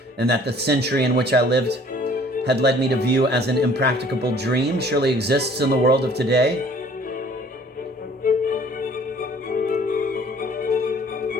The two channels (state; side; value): normal; both; correlation 0.54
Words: and that the century in which I lived had led me to view as an impracticable dream, surely exists in the world of today.